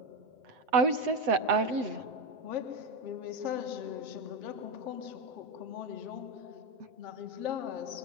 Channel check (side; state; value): left; late; 7.7 ms